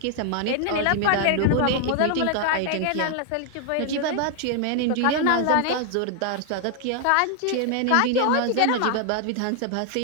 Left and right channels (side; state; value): both; different; correlation 0.00